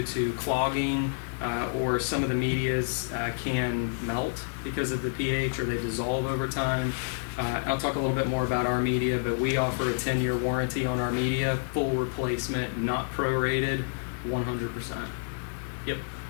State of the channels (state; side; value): silent; right; digital silence